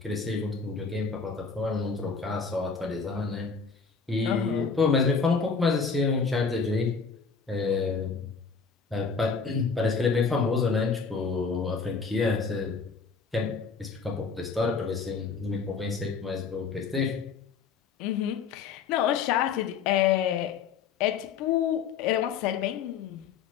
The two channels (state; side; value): quieter; right; 5.5 dB